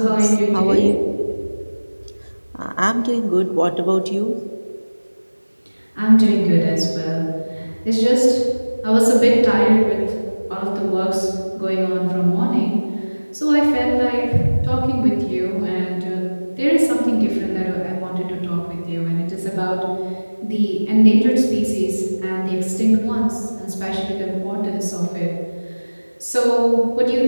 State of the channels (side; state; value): both; inverted; correlation -1.00